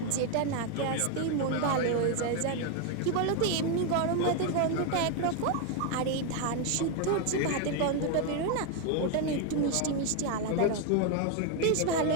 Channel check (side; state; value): both; different; correlation 0.01